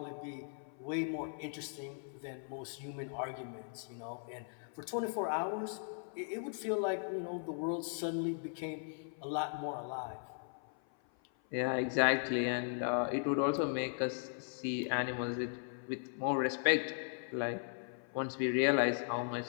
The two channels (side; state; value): right; silent; 53 dB below the other